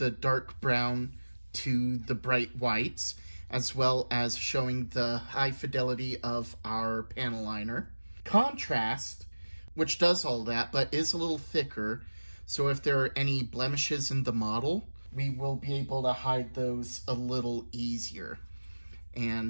dark brown to the bright whites, as well as showing the high fidelity of our panel liner. Contrast, which does all that, but is a little thicker, so if there are any blemishes in the model, we will be able to hide those a little easier.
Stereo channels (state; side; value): inverted; both; correlation -1.00